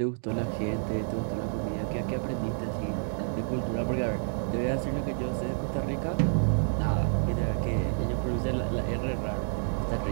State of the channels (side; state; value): left; silent; digital silence